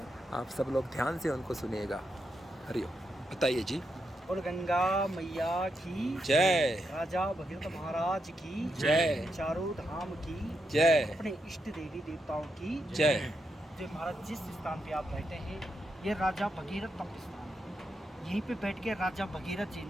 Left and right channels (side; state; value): both; normal; correlation 0.83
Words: आप सब लोग ध्यान से उनको सुनिएगा। हरिओम। बताइए जी। और गंगा मैया की जय। राजा भगीरथ महाराज की जय। चारों धाम की जय। अपने इष्ट देवी देवताओं की जय। जो महाराज जिस स्थान पे आप बैठे हैं ये राजा भगीरथ तप स्थान है। यहीं पे बैठ के राजा भगीरथ जी